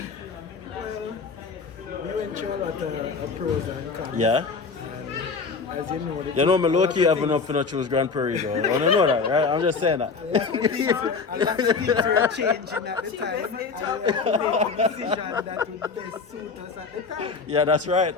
We went through a lot of pros and cons. Yeah? And as you know, You know, me low-key having up for not choose Grand Prairie though. I don't know that, right? I'm just saying that. a lot of things were changing at the time. And we had to make a decision that would best suit us at the time. Yeah, that's right.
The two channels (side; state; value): right; quieter; 4.9 dB